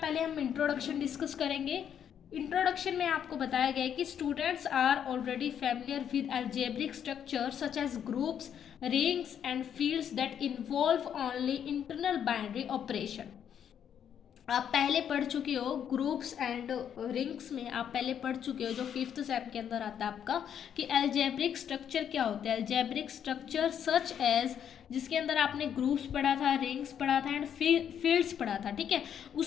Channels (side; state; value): right; quieter; 8.8 dB